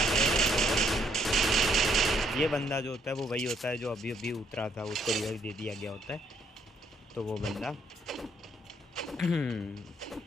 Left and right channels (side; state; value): both; normal; correlation 0.70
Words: है। ये बंदा जो होता है वो वही होता है जो अभी अभी उतरा था, उसको रिवाइव दे दिया गया होता है। तो वो बंदा